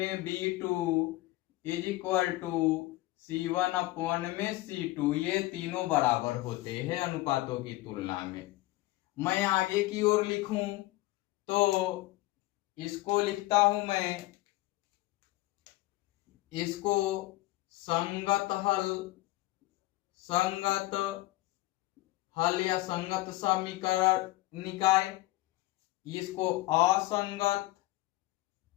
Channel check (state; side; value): quieter; right; 18.7 dB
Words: B2 is equal to C1 upon में C2। ये तीनों बराबर होते हैं अनुपातों की तुलना में। मैं आगे की ओर लिखूं तो इसको लिखता हूं मैं, इसको संगत हल, संगत हल या संगत समीकरण निकाय। इसको असंगत,